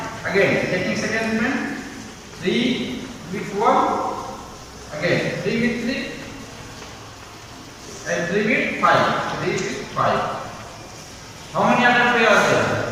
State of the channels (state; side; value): identical; both; correlation 1.00